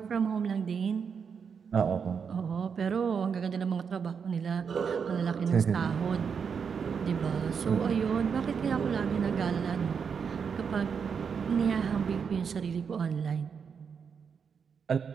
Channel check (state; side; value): quieter; left; 6.4 dB